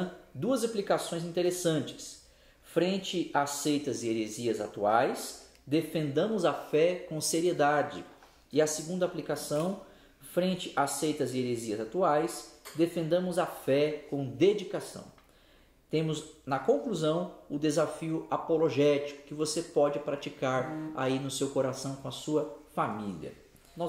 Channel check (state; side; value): identical; both; correlation 1.00